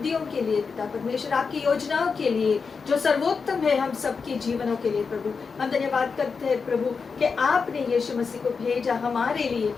के लिए पिता परमेश्वर, आपकी योजनाओं के लिए जो सर्वोत्तम है हम सबके जीवनों के लिए प्रभु। हम धन्यवाद करते हैं प्रभु कि आपने यीशु मसीह को भेजा हमारे लिए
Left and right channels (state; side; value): quieter; right; 5.2 dB